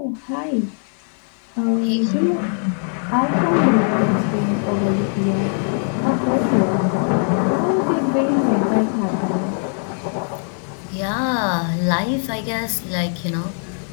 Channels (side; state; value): right; silent; 56 dB below the other